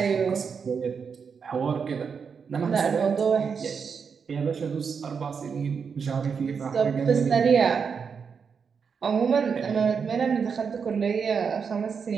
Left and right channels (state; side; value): quieter; left; 6.1 dB